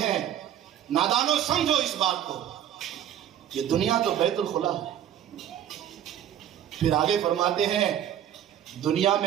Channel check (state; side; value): quieter; left; 10.6 dB